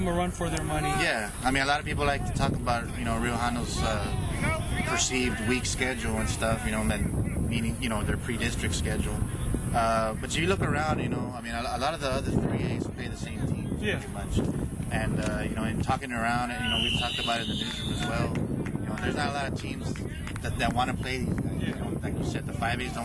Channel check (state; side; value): identical; both; correlation 1.00